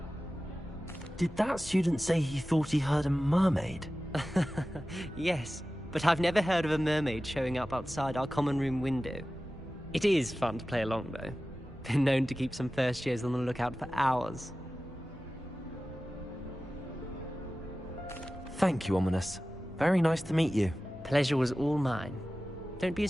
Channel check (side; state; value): both; normal; correlation 0.95